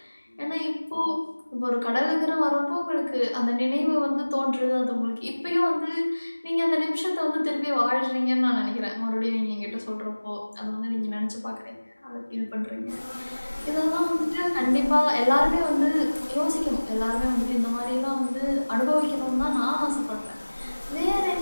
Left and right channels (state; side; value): inverted; both; correlation -1.00